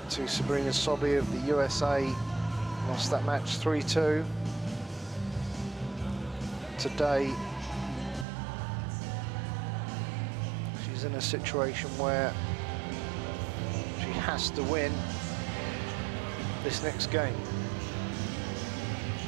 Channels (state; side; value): drops out; left; at 8.2 s